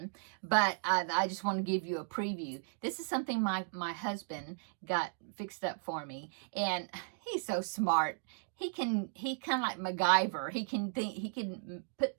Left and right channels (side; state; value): left; silent; digital silence